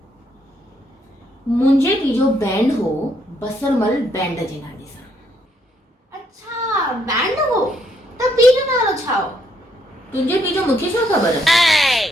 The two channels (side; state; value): both; normal; correlation 0.72